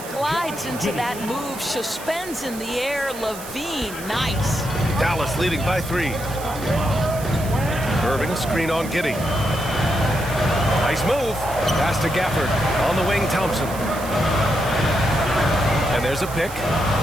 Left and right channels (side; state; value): right; noise; hiss, 14 dB below the sound